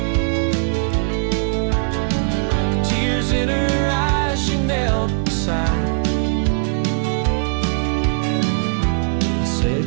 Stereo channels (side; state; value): left; silent; digital silence